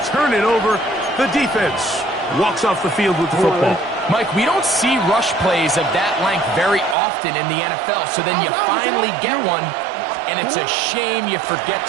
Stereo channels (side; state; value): left; drops out; at 7.0 s